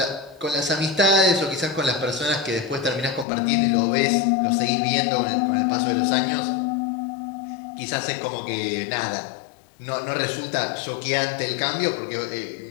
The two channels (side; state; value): right; drops out; at 3.2 s